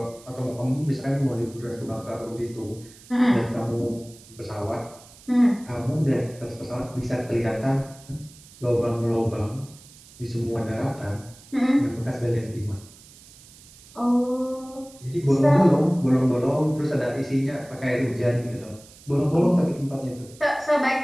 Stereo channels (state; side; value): noise; right; hiss, 22 dB below the sound